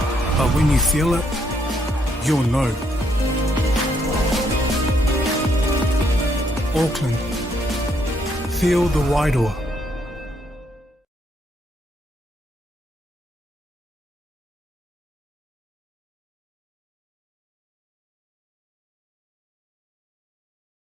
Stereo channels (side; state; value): both; normal; correlation 0.73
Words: But when you feel it, you'll know. Auckland, feel the wairoa.